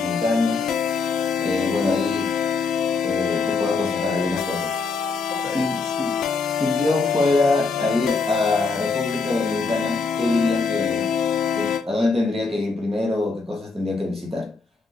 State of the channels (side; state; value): right; quieter; 4.3 dB